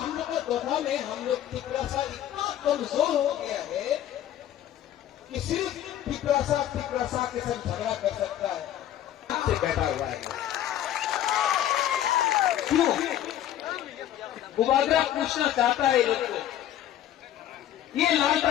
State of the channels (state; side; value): quieter; right; 11.8 dB